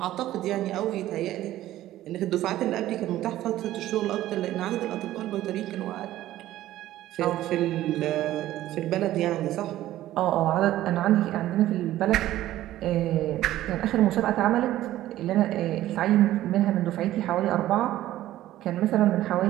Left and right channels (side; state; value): left; quieter; 14.2 dB